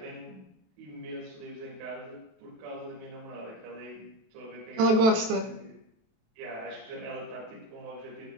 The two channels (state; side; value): late; left; 27 ms